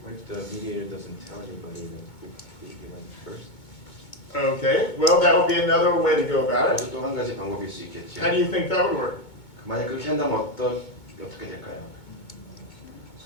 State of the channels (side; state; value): right; late; 2.2 ms